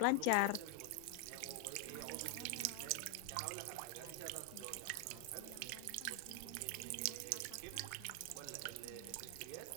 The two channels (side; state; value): both; different; correlation 0.00